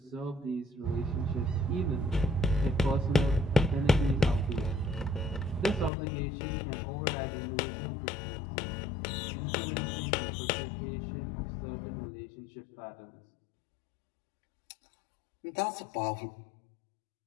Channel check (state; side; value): drops out; right; at 5.9 s